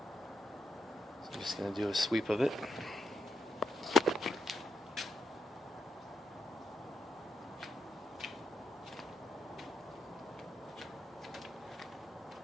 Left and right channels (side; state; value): both; normal; correlation 0.83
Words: So I'm just going to do a sweep of it.